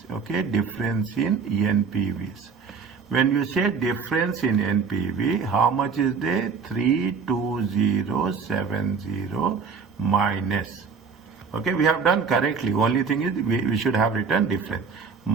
Okay. Difference in NPVs. When you say difference in NPV, how much is there? 32070 minus. Okay, we have done correctly. Only thing is we should have written difference.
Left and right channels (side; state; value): left; quieter; 5.4 dB